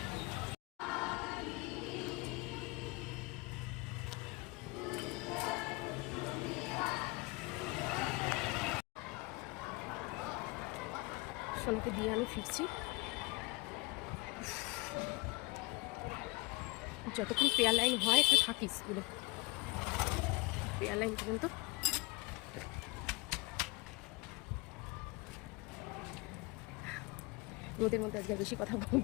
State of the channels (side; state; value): right; quieter; 25.1 dB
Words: সোনাকে দিয়ে আমি ফিরছি। যতক্ষণ পেয়ার লাইন হয় একটু থাকি স্কুলে, পেয়ার লাইন পর্যন্ত। রোদের মধ্যে আজকে বেশি কথা